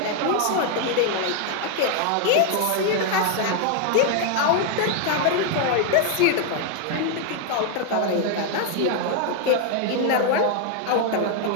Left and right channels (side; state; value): both; different; correlation 0.00